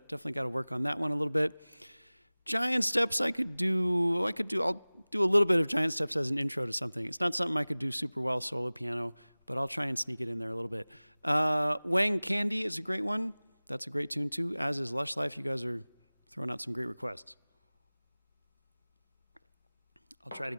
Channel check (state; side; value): inverted; both; correlation -0.99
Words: got to work on that one a little bit. Giant Steps, I'll do a little bit of Giant Steps as an intro to something. It's not something I could do super well solo piano, but I'll try and sneak it in there a little bit. Wang Candy is a great one. That's a great tune too, as is Lush Life. You guys are throwing out some great requests. I'll try to